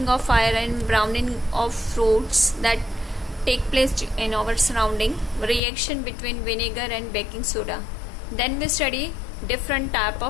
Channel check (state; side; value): drops out; right; at 5.6 s